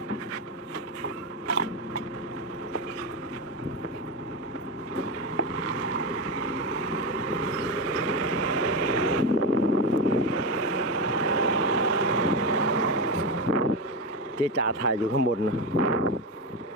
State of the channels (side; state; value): both; normal; correlation 0.15